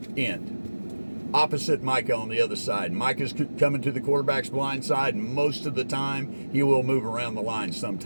end. Opposite Micah on the other side. Micah's coming to the quarterback's blind side, and most of the time he will move around the line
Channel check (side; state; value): both; inverted; correlation -1.00